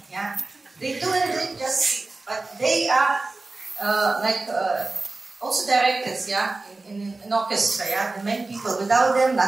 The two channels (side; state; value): left; quieter; 3.3 dB